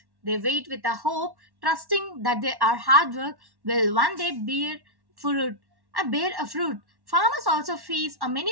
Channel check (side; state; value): left; late; 1.1 ms